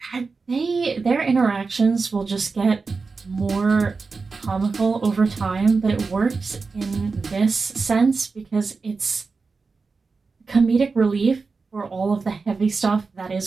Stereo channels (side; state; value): left; quieter; 4.4 dB